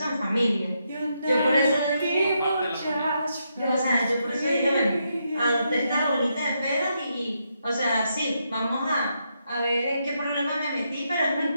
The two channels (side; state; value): both; inverted; correlation -0.80